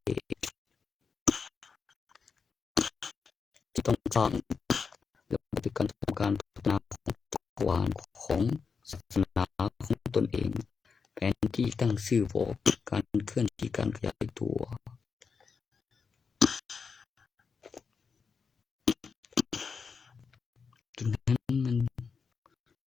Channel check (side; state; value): right; quieter; 5.5 dB